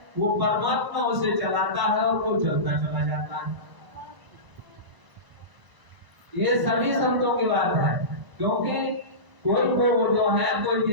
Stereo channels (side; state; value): left; late; 1.0 ms